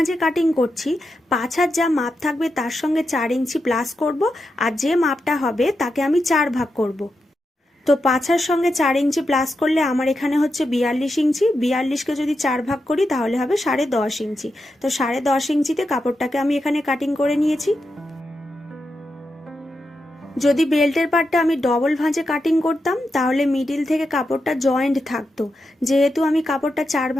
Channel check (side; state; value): both; normal; correlation 0.87